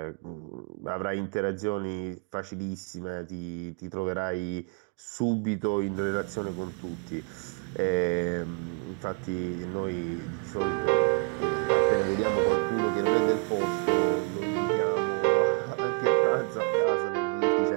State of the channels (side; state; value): left; quieter; 37.9 dB